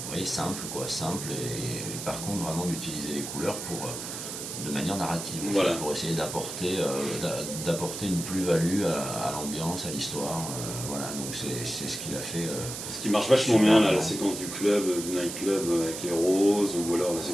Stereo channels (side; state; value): right; noise; hiss, 7 dB below the sound